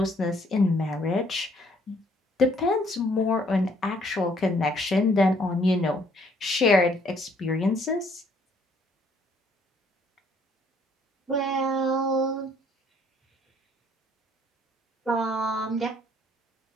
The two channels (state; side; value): normal; both; correlation 0.64